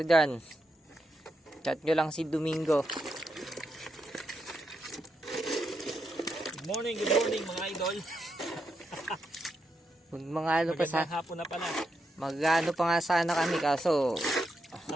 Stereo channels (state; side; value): normal; both; correlation 0.83